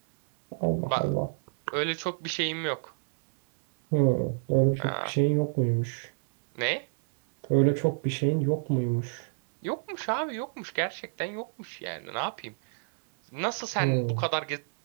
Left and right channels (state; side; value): silent; left; 59 dB below the other